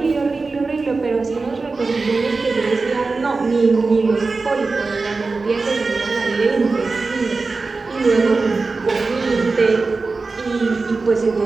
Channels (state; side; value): quieter; left; 3.9 dB